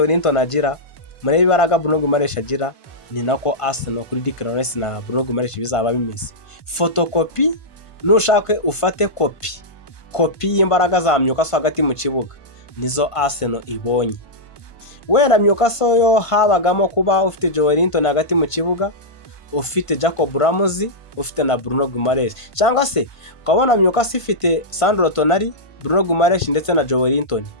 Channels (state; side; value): late; right; 1.5 ms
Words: agira, mureba ibibaraga Bruno Guimaraes agira, ni nako Arsenal kuri Declan Rice na Bruno Guimaraes bizaba bimeze. Photocopy nushake ufate kopi y'imbaraga za Newcastle hagati mu kibuga, nizo Arsenal ibonye. Wenda Newcastle yo habagamo kuba ufite Joelinton hagati mu kibuga, ufite Jacob Ramsey, ufite na Bruno Guimaraes, cyangwa se ukabona Newcastle ifite Sandro Tonali, Bruno Guimaraes ndetse na Joelinton,